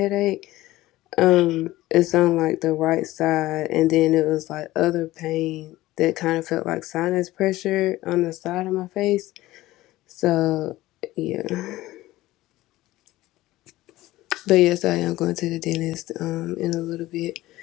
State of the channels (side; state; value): right; quieter; 17.0 dB